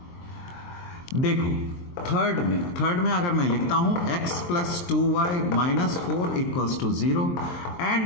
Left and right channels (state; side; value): late; right; 23 ms